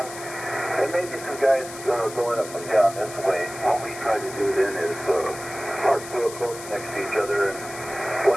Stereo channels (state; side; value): noise; left; hiss, 13 dB below the sound